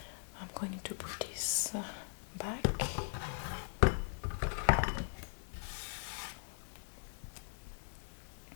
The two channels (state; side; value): silent; right; digital silence